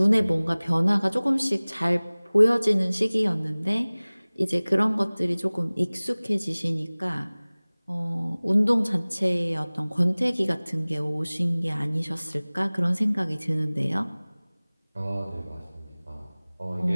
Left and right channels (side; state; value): both; inverted; correlation -1.00